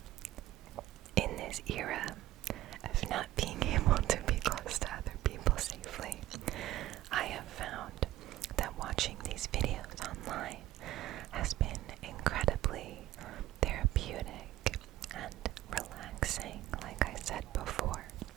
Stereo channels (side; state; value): left; quieter; 14.9 dB